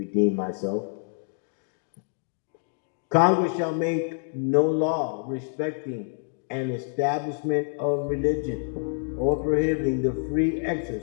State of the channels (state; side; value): silent; right; digital silence